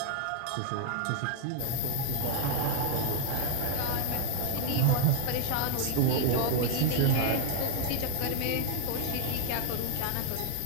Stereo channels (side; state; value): both; different; correlation 0.01